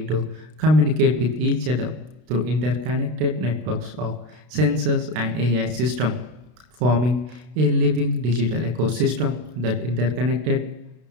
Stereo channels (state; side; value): late; left; 32 ms